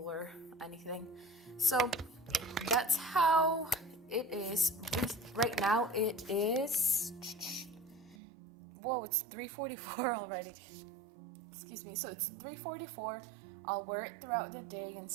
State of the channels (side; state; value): left; drops out; at 8.2 s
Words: or anything. So that's how it is. Right now it is, whoa, it's 3:44 already. Excuse me. So it's 3:44. I'll wear it throughout the day and